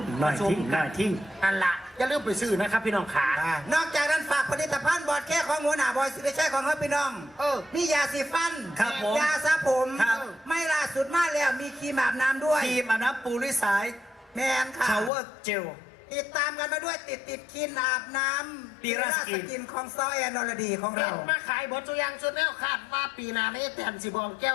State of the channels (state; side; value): drops out; right; at 15.1 s